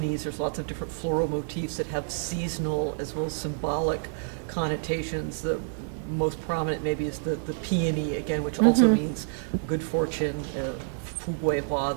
there's lots of different floral motifs that have seasonal as well as symbolic connotations. The most prominent maybe is the peony, again, which also means good fortune. Fu Gui Hua,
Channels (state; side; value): silent; left; digital silence